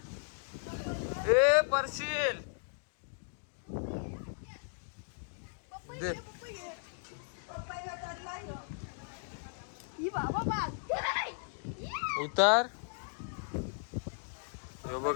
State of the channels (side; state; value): right; silent; digital silence